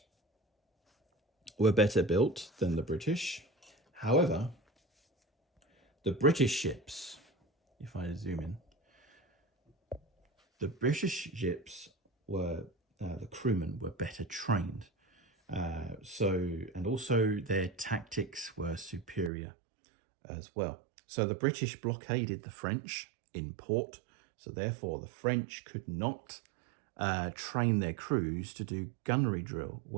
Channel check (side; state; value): left; drops out; at 19.3 s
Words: were better built than the British. However, the British ships, if I zoom in, the British ships were, the crewmen were better trained. And also their tactics were superior as well. So the British blockaded the French in port. So therefore the French could not train their crews to do gunnery drill,